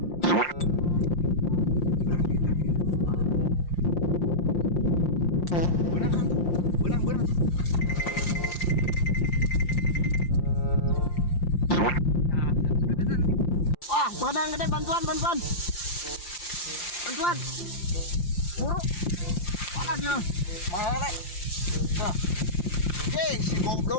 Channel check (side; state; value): right; late; 5.7 ms